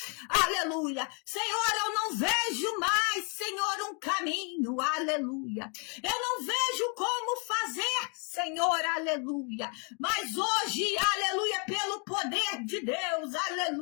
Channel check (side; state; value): right; quieter; 37.0 dB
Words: Aleluia, Senhor, eu não vejo mais, Senhor, um caminho, aleluia, eu não vejo como fazer, Senhor, aleluia, mas hoje, aleluia, pelo poder de Deus,